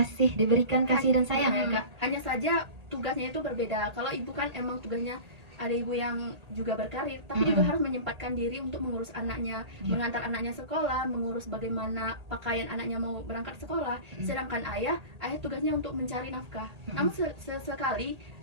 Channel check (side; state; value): left; late; 1.8 ms